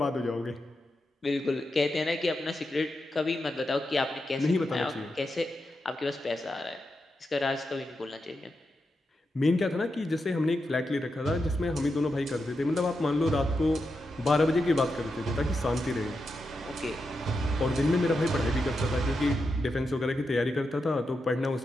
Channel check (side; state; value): both; normal; correlation 0.87